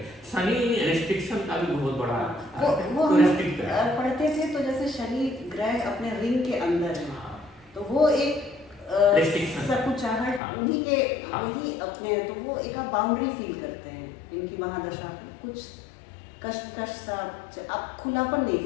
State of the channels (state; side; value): drops out; right; at 10.4 s